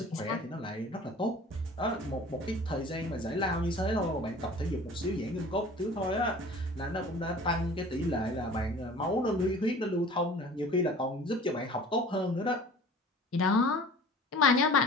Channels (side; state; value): both; normal; correlation 0.44